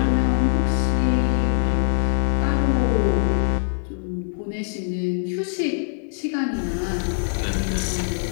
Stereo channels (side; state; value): right; silent; digital silence